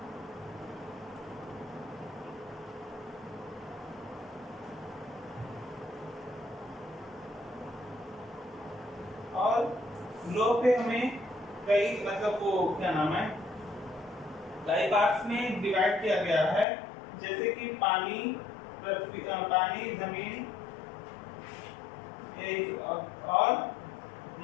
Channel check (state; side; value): drops out; right; at 16.7 s